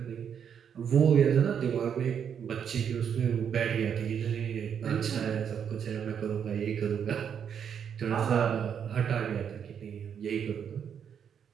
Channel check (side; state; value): left; quieter; 7.9 dB